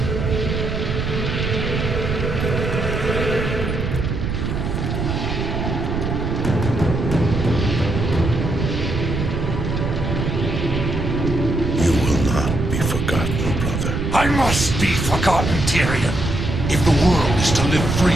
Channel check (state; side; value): noise; right; rumble, 2 dB below the sound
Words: I must be forgotten, Tyrion. If the world is to live